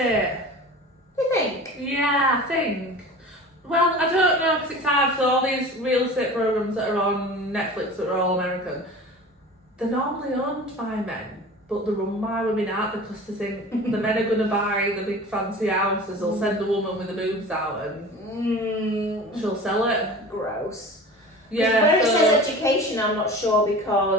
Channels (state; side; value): normal; both; correlation 0.38